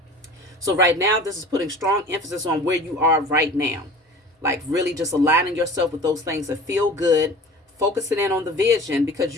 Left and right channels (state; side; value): normal; both; correlation 0.41